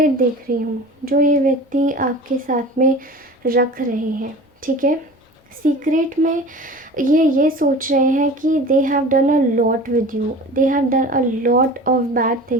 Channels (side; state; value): both; normal; correlation 0.38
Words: देख रही हूँ जो ये व्यक्ति आपके साथ में रख रहे हैं, ठीक है। सीक्रेट में ये सोच रहे हैं कि they have done a lot with you, they have done a lot of bad